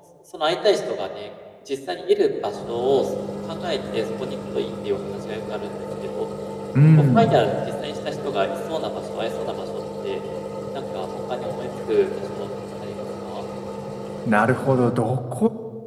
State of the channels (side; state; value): both; identical; correlation 1.00